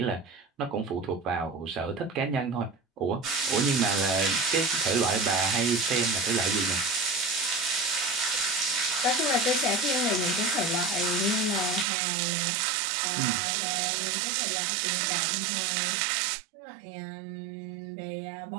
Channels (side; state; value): left; drops out; at 11.9 s